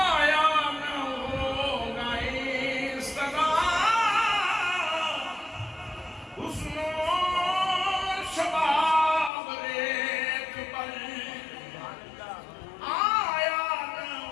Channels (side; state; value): right; drops out; at 9.3 s